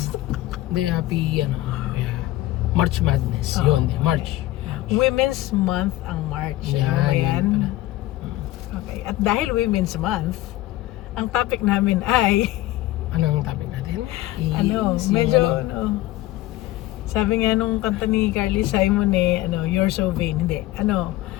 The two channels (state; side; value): quieter; right; 16.5 dB